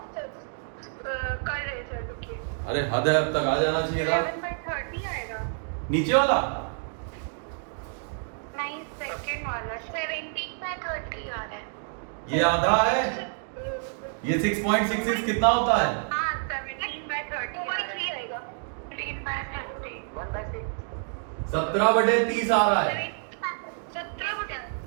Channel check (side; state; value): left; silent; 59 dB below the other